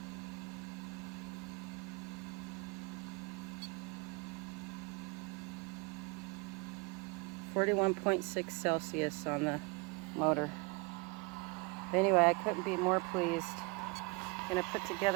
.6 Celsius on the motor. But anyway, I couldn't be more pleased. I'm gonna put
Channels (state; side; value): quieter; left; 28.0 dB